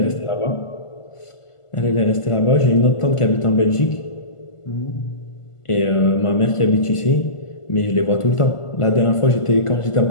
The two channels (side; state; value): right; late; 1.5 ms